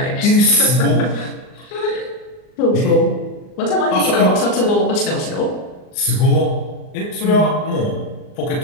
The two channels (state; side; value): late; right; 39 ms